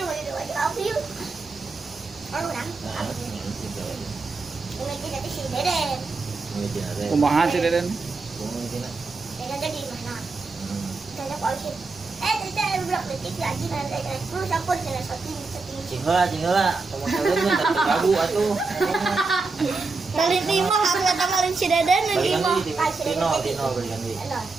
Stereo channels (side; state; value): left; quieter; 4.0 dB